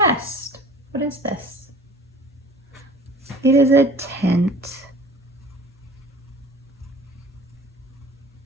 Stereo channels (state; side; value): normal; both; correlation 0.45